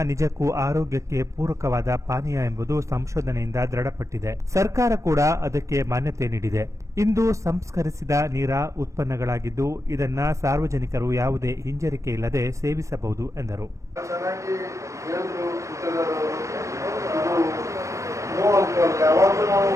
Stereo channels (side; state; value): left; late; 0.15 ms